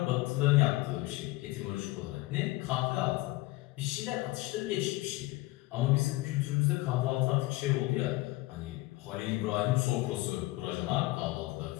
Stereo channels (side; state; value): right; quieter; 20.0 dB